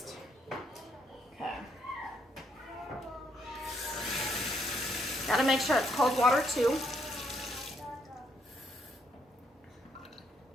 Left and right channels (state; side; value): normal; both; correlation 0.73